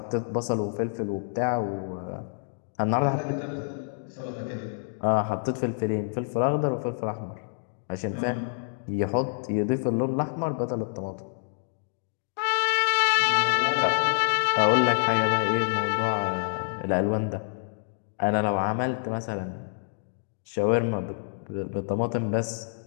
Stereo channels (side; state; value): right; silent; digital silence